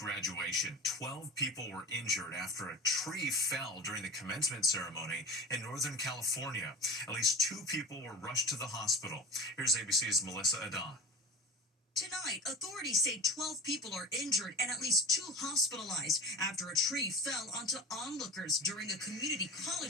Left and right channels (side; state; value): both; normal; correlation 0.30